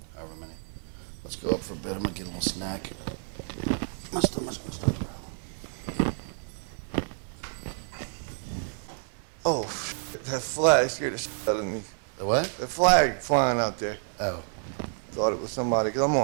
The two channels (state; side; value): silent; left; 59 dB below the other